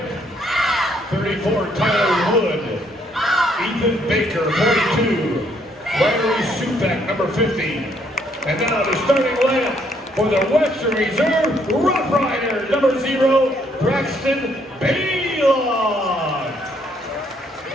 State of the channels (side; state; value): both; normal; correlation 0.69